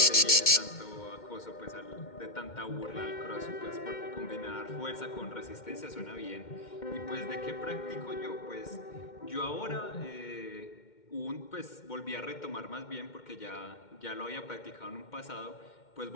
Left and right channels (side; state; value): right; late; 2.1 ms